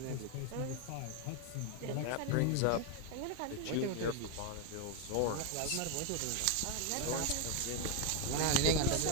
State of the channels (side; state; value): both; different; correlation 0.01